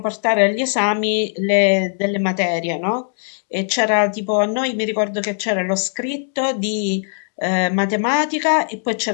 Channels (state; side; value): silent; right; digital silence